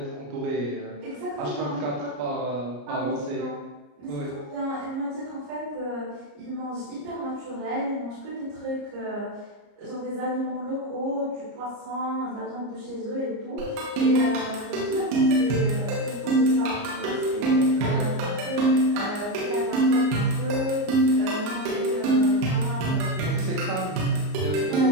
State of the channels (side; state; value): left; late; 34 ms